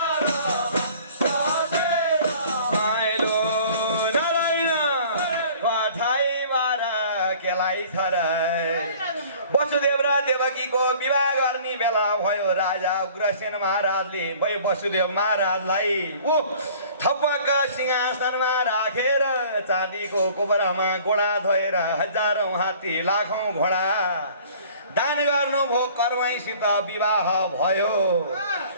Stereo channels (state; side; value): inverted; both; correlation -0.50